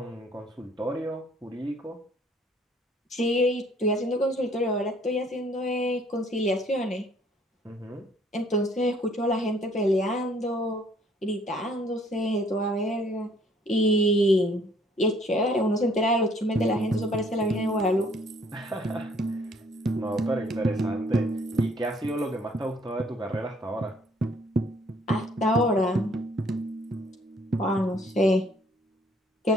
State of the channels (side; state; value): both; normal; correlation 0.61